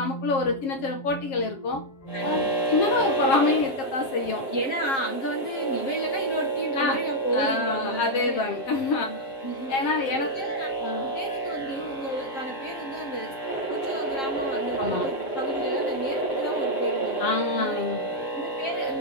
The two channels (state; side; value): late; right; 7.4 ms